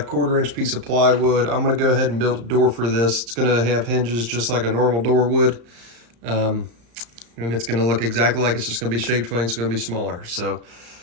1/4-inch piece of plywood. I'm going to go ahead and build a door for this. It's going to have hinges just like a normal door would. And it's going to look exactly like it's just going to be shaped funny. It's going to be smaller. So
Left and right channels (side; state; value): left; late; 34 ms